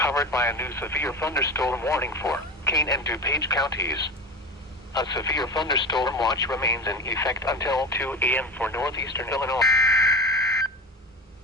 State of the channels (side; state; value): both; normal; correlation 0.27